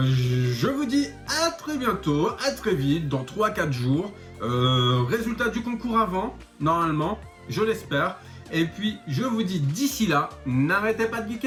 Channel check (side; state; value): both; identical; correlation 1.00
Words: vous dis à très bientôt, à très vite, dans 3-4 jours. Résultat du concours avant, normalement, je l'espère. Et puis, je vous dis d'ici là, n'arrêtez pas de